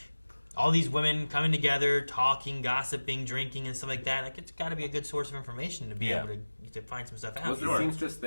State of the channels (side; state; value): both; inverted; correlation -1.00